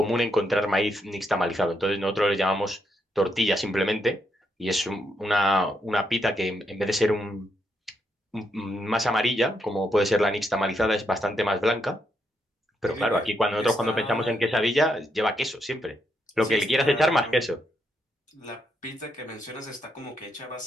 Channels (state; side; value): normal; both; correlation 0.79